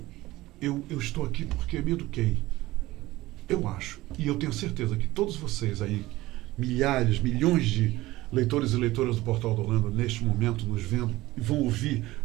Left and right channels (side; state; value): left; quieter; 18.0 dB